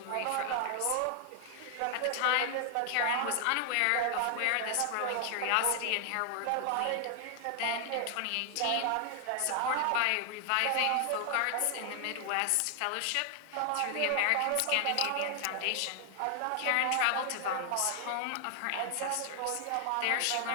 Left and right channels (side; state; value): both; different; correlation 0.00